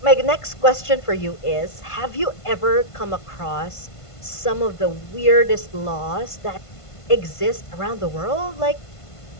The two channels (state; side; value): late; right; 1.5 ms